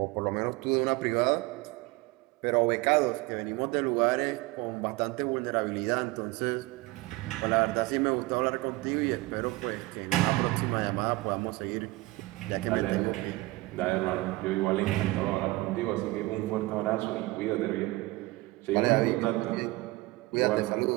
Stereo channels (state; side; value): quieter; left; 21.2 dB